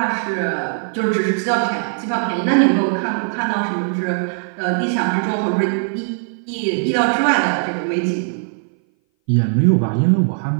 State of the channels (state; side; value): silent; left; 59 dB below the other